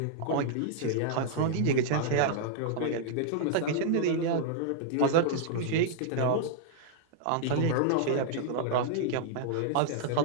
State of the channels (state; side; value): different; both; correlation -0.01